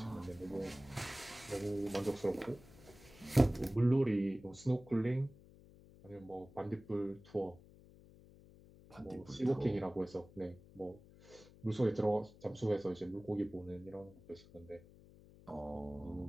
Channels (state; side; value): noise; left; hum, 22 dB below the sound